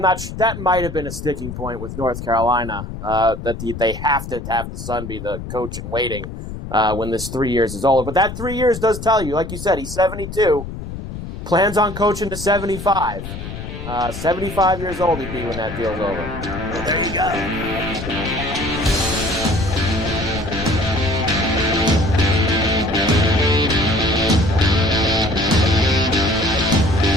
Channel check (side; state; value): left; noise; rumble, 9 dB below the sound